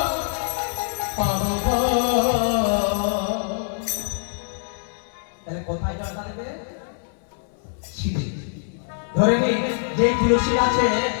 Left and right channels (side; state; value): right; silent; 62 dB below the other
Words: তাহলে কোথায় জল ঢালবে? শিরে। ধরে নিন যে তুলসী গাছে